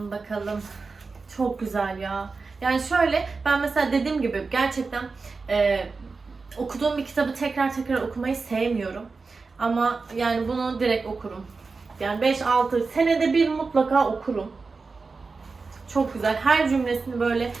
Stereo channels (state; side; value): quieter; left; 4.3 dB